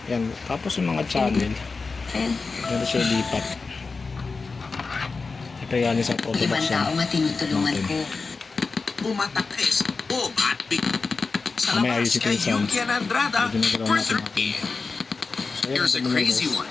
Yan. Tapos yung mga channel. Ayun. Ito siya lipat. Ito yan sa ibang production. tao matinutulungan ko. Umatakes Bob at Big. Sa Mamaya labas ayusin ko kay yung sound. Yuki and Andrada Medyo nagkaroon for natin 30. So, yan, Here's a ito yung crazy numbers.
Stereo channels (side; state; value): right; quieter; 4.3 dB